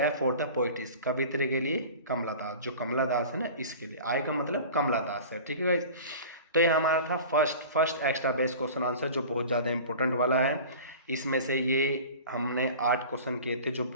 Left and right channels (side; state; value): both; inverted; correlation -0.39